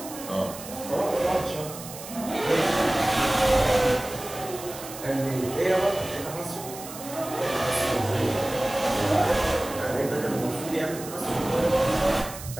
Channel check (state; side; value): noise; right; hiss, 13 dB below the sound